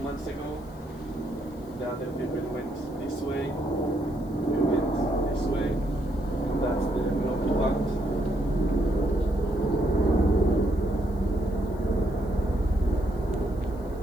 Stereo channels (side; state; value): left; noise; hiss, 29 dB below the sound